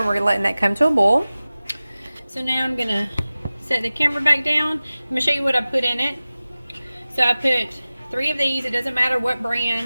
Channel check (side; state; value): both; inverted; correlation -0.97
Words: we're letting that come to a boil. So now I'm going to set the camera back down. I'm going to show you what I put in it. So I put 3 of these. It doesn't matter what